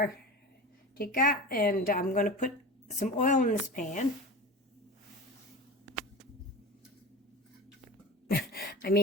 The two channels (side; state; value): both; normal; correlation 0.31